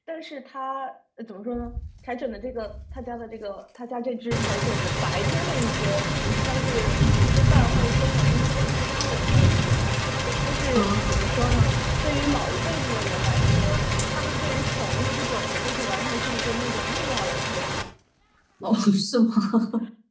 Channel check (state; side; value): identical; both; correlation 1.00